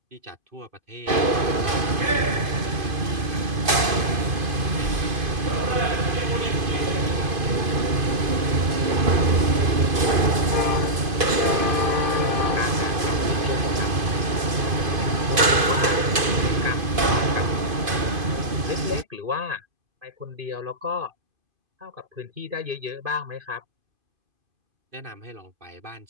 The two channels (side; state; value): left; late; 2.5 ms